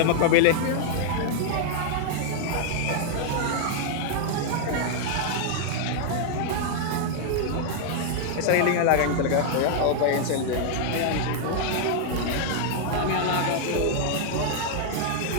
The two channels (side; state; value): both; different; correlation 0.00